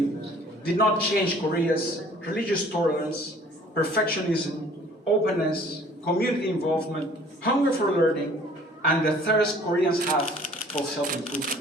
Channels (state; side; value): normal; both; correlation 0.53